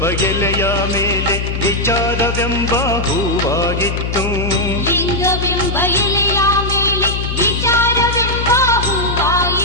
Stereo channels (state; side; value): noise; left; hum, 3 dB below the sound